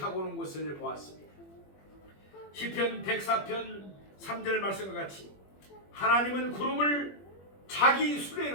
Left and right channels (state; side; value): late; right; 21 ms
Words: 오는 것을 보았습니다. 시편 104편 3절 말씀과 같이 하나님은 구름을 자기